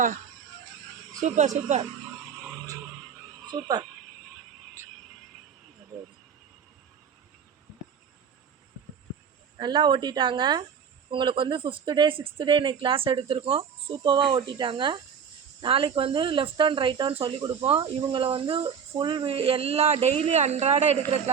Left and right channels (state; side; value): quieter; left; 7.1 dB